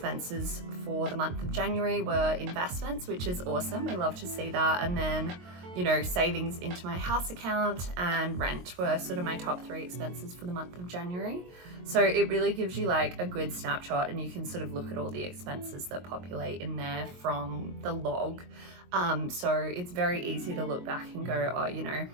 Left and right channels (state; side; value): late; left; 22 ms